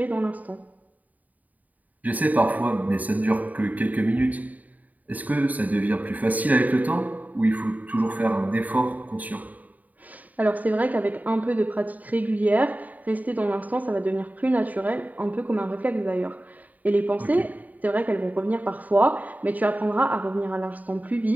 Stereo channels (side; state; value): left; late; 0.076 ms